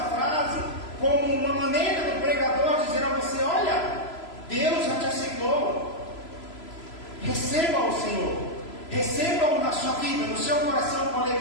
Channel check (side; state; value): right; late; 3.0 ms